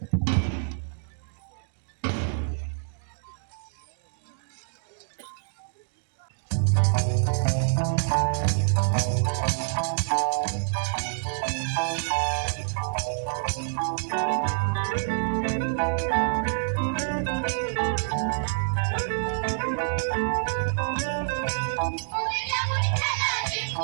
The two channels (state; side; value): silent; left; digital silence